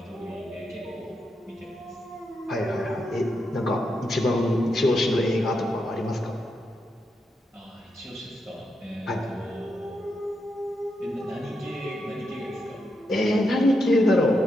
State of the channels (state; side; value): normal; both; correlation 0.84